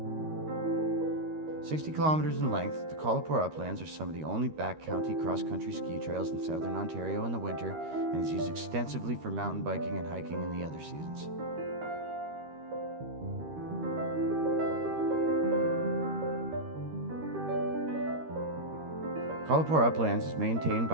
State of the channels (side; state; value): left; late; 13 ms